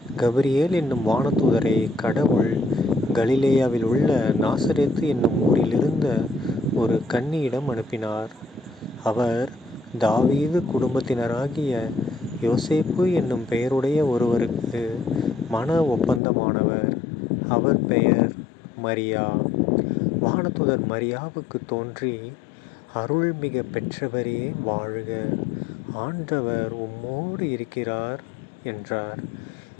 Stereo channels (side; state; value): right; drops out; at 16.2 s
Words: கபிரியேல் என்னும் வானதூதரை கடவுள் கலிலேயாவில் உள்ள நாசரேத்து என்னும் ஊரில் இருந்த ஒரு கன்னியிடம் அனுப்பினார். அவர் தாவீது குடும்பத்தினராகிய யோசேப்பு என்னும் பெயருடைய ஒருவருக்கு மன ஒப்பந்தமானவர். அவர் பெயர் மரியா. வானதூதர் மரியாவுக்கு தோன்றி, அருள்மிக பெற்றவரே வாழ்க, ஆண்டவர் உம்மோடு இருக்கிறார் என்றார்.